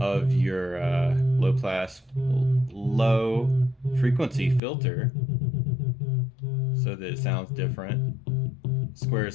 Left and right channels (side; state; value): right; drops out; at 4.6 s